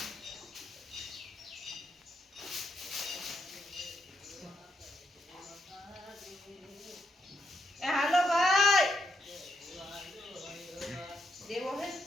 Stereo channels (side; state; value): both; normal; correlation 0.79